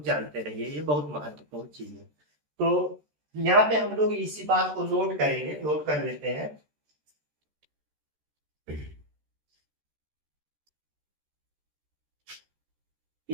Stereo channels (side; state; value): left; late; 13 ms